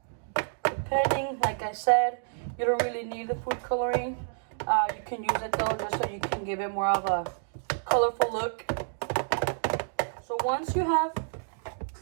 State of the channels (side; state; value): left; silent; digital silence